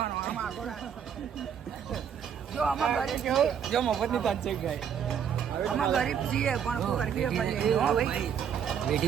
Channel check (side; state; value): left; quieter; 8.1 dB